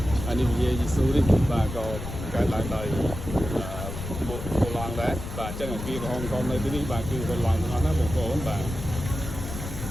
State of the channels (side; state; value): left; noise; rumble, 8 dB below the sound